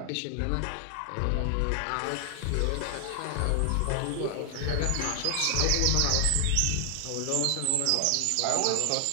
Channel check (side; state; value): both; different; correlation 0.00